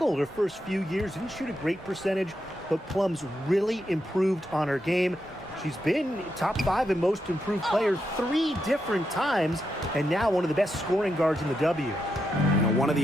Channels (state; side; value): normal; both; correlation 0.84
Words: her first few years. Didn't shoot a great percentage, but Plum's really improved on her game. She's been top 5 in most improved player 3 different times, and now one of the best scoring guards in the W. You know, one of